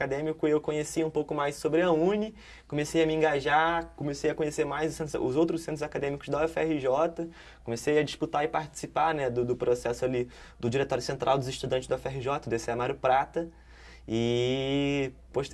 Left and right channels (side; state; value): both; identical; correlation 1.00